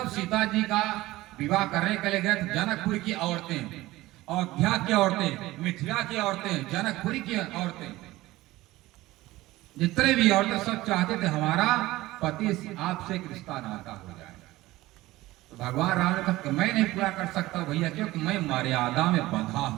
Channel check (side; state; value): left; quieter; 18.0 dB